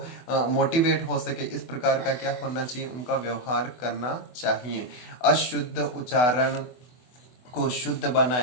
मोटिवेट हो सके इस प्रकार का क्या होना चाहिए, उनका व्यवहार करना चाहिए। अशुद्ध उच्चारण को शुद्ध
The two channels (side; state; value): right; late; 24 ms